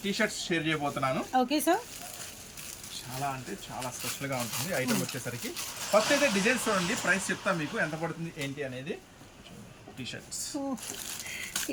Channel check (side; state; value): both; identical; correlation 1.00